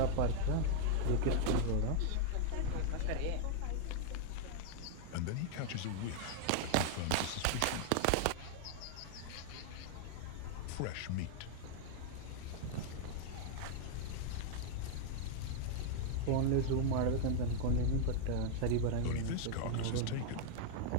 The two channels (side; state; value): both; different; correlation -0.01